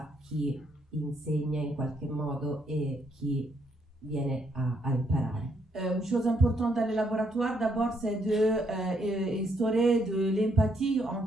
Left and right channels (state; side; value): normal; both; correlation 0.74